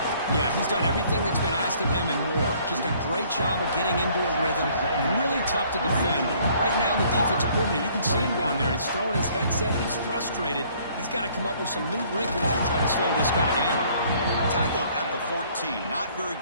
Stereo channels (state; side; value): inverted; both; correlation -0.60